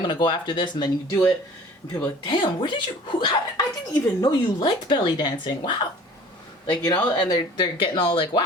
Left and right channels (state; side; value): normal; both; correlation 0.47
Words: going to go after this, and then you do it. And people are like, damn, where did you, I didn't even know you liked belly dancing. Wow. Like, you know, and they're getting all like,